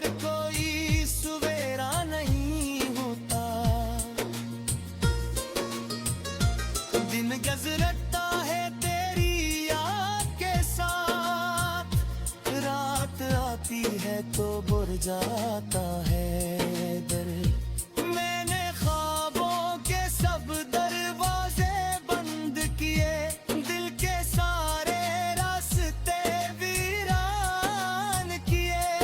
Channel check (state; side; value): identical; both; correlation 1.00